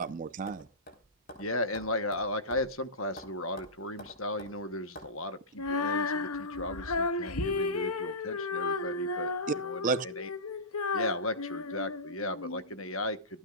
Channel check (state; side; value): normal; both; correlation -0.19